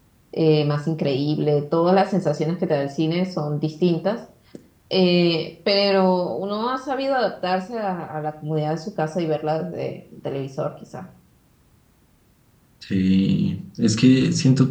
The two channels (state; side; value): identical; both; correlation 1.00